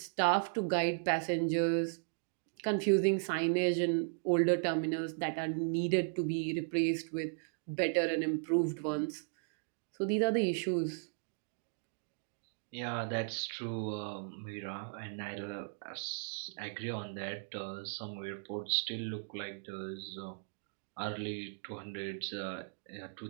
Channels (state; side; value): silent; left; digital silence